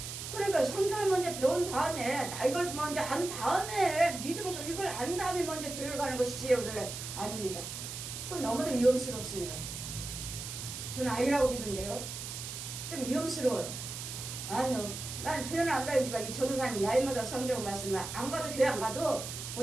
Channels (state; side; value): noise; right; hiss, 7 dB below the sound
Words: 그러니까 성경을 먼저 배운 다음에 이걸 먼저 안 다음에 이걸 안 다음에 먼저 교회를 가는 것이지. 그래 아닙니다. 그건 너무도 위험스럽습니다. 저는 아니라고 믿는데요. 좀 위험스러워요. 아니요, 나는 교회는 안 다니지만 이 전도사님이 나이마다 성경 말씀을 안 가도 교회 안 가도